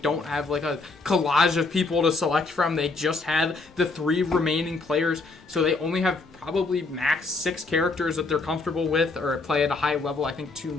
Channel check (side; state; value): right; quieter; 3.7 dB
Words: have like a collage of people to select from. They just have the 3 remaining players, so they only have probably max 6 characters that they're comfortable with or play at a high level. I think 2